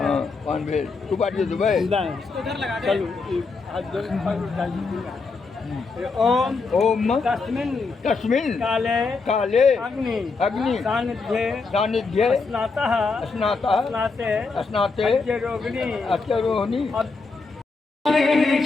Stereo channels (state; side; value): quieter; right; 4.2 dB